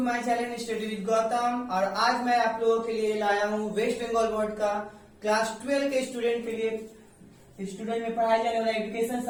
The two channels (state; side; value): identical; both; correlation 1.00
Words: my channel study with Gautam. और आज मैं आप लोगों के लिए लाया हूँ वेस्ट बंगाल बोर्ड का क्लास 12 के स्टूडेंट के लिए स्टूडेंट में पढ़ाया जाने वाला एजुकेशन